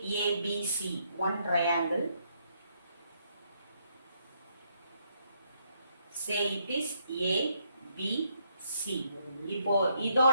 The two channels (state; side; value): inverted; both; correlation -0.73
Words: ABC, one triangle. Say it is ABC. இப்போ